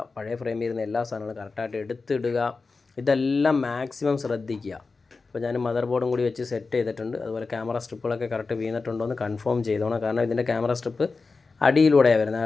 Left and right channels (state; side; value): quieter; right; 4.2 dB